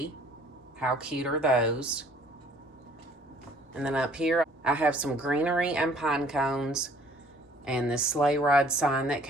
How cute are those? And then up here, I have some greenery and pine cones and this sleigh ride sign that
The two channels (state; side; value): normal; both; correlation 0.57